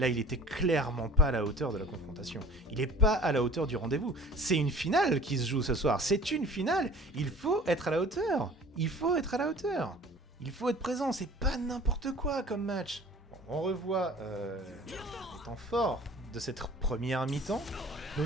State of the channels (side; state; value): both; normal; correlation 0.46